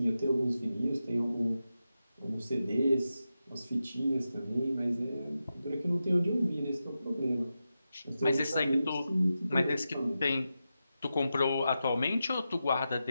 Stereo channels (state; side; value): inverted; both; correlation -0.90